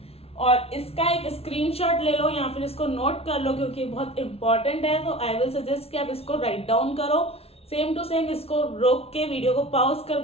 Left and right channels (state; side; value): late; right; 0.29 ms